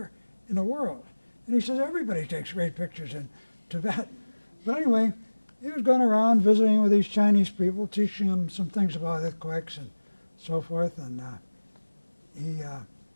in the world. And he says, everybody takes great pictures in Tibet. But anyway, he was going around visiting with these Chinese people, teaching them some things about earthquakes and so forth. And he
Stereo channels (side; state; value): both; inverted; correlation -1.00